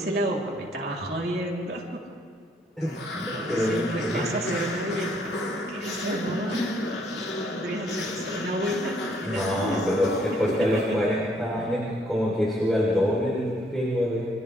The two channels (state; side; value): normal; both; correlation 0.67